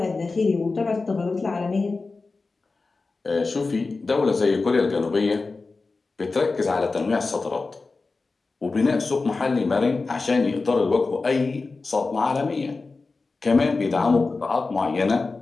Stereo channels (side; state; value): right; quieter; 3.9 dB